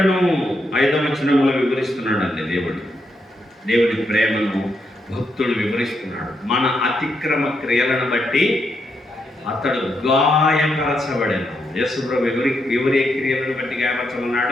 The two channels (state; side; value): normal; both; correlation 0.81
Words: 5వ వచనంలో వివరిస్తున్నాడండి దేవుడి ప్రేమను భక్తుడు వివరిస్తున్నాడు. మన అతిక్రమ క్రియలను బట్టి అతడు గాయపరచబడను. యేసుప్రభు ఎవరి క్రియలను బట్టి